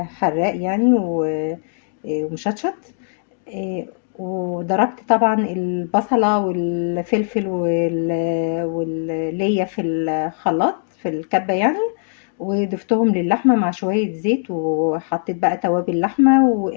حراق يعني ومشطشط. وضربت طبعا البصله والفلفل والليا في الخلاط في الكبه يعني، وضفتهم للحمة مع شوية زيت، وحطيت بقى توابل لحمة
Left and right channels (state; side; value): silent; right; digital silence